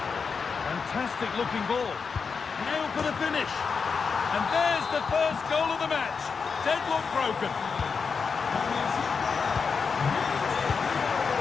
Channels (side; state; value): right; quieter; 5.5 dB